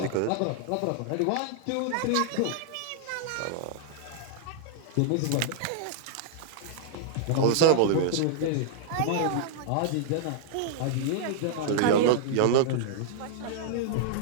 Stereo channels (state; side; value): different; both; correlation -0.01